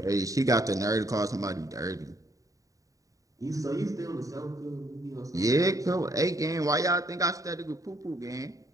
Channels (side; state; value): left; late; 0.16 ms